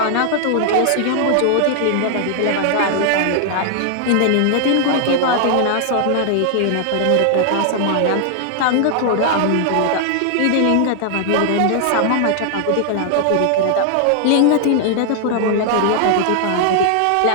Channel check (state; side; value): different; both; correlation 0.00